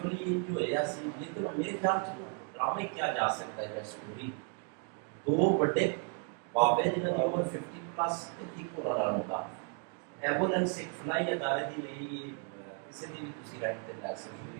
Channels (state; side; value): quieter; left; 37.6 dB